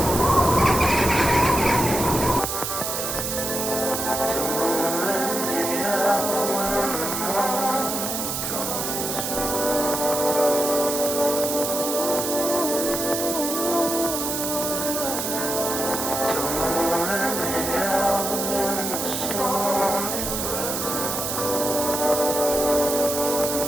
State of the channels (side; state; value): right; noise; hiss, 3 dB below the sound